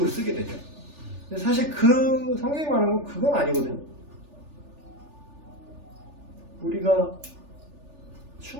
쓰게 되죠. 근데 사실 그 성경이 말하는 건 그건 아니거든요. 우리가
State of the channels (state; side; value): late; left; 3.4 ms